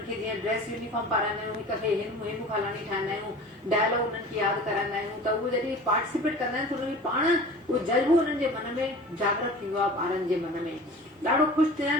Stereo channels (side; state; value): both; normal; correlation 0.40